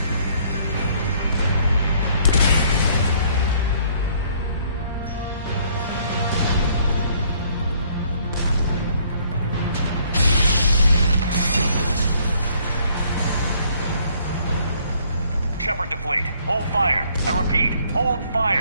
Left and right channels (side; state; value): both; inverted; correlation -0.63